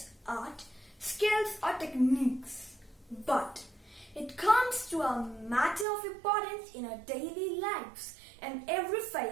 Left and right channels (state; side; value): drops out; left; at 5.9 s